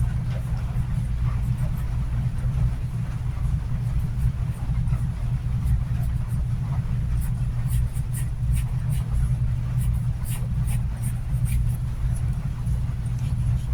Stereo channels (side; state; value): both; identical; correlation 1.00